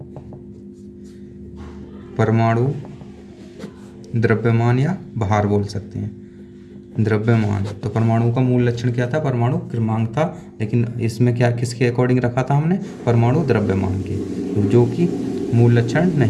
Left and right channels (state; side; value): identical; both; correlation 1.00